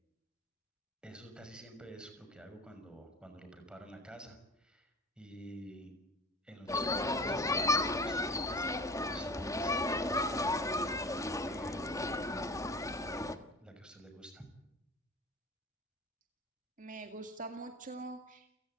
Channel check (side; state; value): both; normal; correlation 0.38